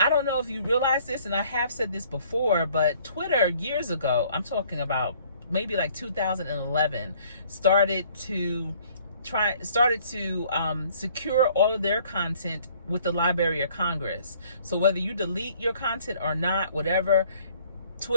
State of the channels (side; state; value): both; inverted; correlation -0.59